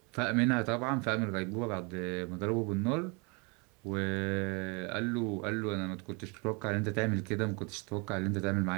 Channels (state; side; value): quieter; left; 31.0 dB